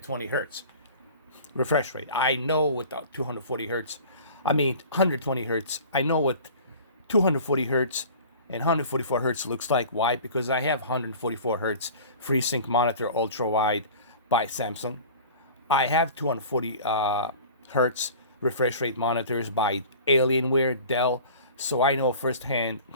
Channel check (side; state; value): both; inverted; correlation -0.42